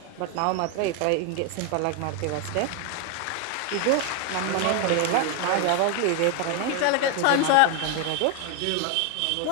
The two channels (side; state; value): both; different; correlation 0.01